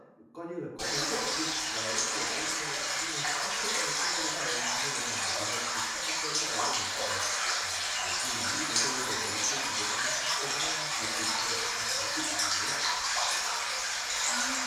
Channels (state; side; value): identical; both; correlation 1.00